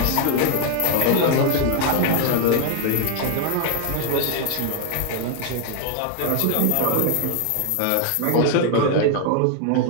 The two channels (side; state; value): both; different; correlation 0.00